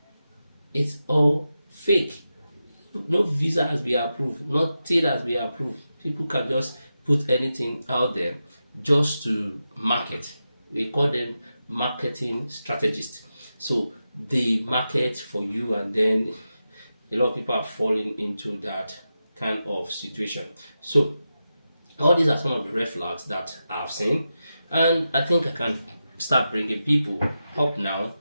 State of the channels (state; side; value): inverted; both; correlation -0.90